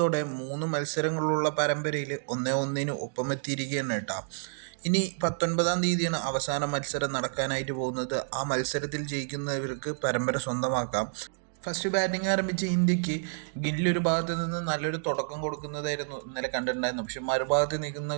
3 മത്സരങ്ങളുള്ള പരമ്പരയിൽ 1-1 ഒപ്പമെത്തിയിരിക്കുകയാണ് കേട്ടോ. ഇനി 19-ാം തീയതിയാണ് അവസാന മത്സരം നടക്കാനായിട്ട് പോകുന്നത്. ആ മത്സരത്തിൽ ജയിക്കുന്നവർക്ക് പരമ്പര സ്വന്തമാക്കാം. ഫസ്റ്റ് ബാറ്റിംഗ് ആരംഭിച്ച ഇന്ത്യക്ക് ഗില്ല് ഒരു ഭാഗത്ത് നിന്ന് നല്ലൊരു തുടക്കം കൊടുക്കുന്നതായിരുന്നു ഇന്നലെ കണ്ടിട്ടുണ്ടായിരുന്നു. പക്ഷെ മറുഭാഗത്ത്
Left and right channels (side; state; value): left; silent; digital silence